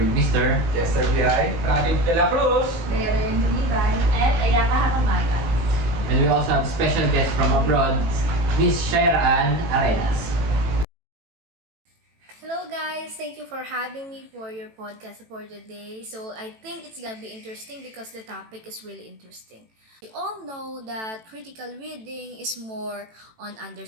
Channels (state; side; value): late; left; 18 ms